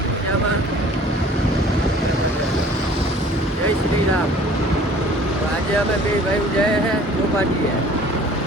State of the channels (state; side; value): normal; both; correlation 0.50